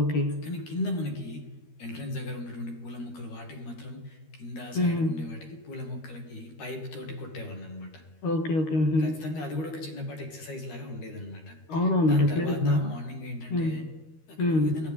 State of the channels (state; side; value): late; right; 13 ms